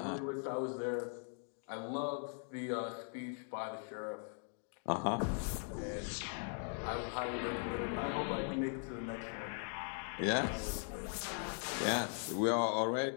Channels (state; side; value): silent; right; 51 dB below the other